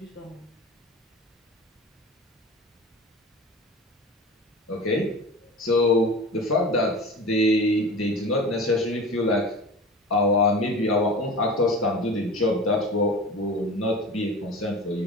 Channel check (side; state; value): both; normal; correlation 0.35